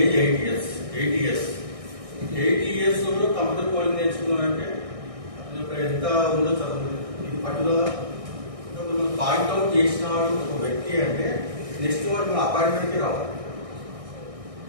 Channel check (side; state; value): left; late; 1.6 ms